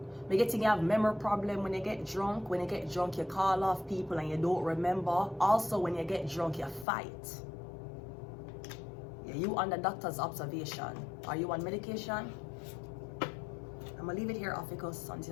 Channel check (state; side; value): drops out; right; at 6.9 s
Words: You getting you have memory problem when you get drunk. When you get drunk, you call off people and you don't remember. Also, when you get drunk, you fight. Yeah, you under doctor's observation. Are you on medication? I'm gonna leave it here, OPHIUCHUS.